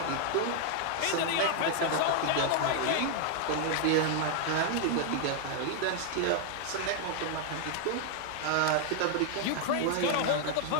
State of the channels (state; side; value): different; both; correlation 0.00